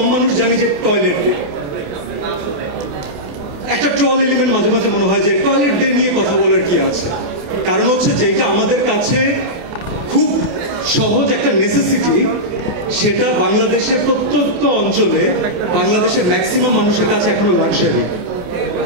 মানুষ জানি যে টয়লেট একটা ট্রল এলিমেন্ট মাঝে মাঝে মনে হয় যে টয়লেট ডে নিয়ে কথা বলার কি আছে। কারণ হচ্ছে যেটা আমাদের কাছে খুব সহজ একটা নেসেসিটি, সেটা বাংলাদেশের প্রত্যন্ত অঞ্চলে বাংলাদেশের ম্যাক্সিমাম মানুষের কাছে এখনো লাক্সারি।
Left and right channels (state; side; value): late; left; 28 ms